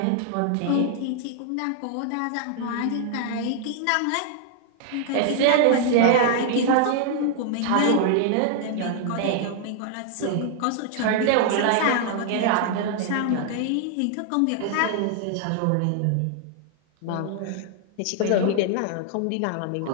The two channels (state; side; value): different; both; correlation 0.00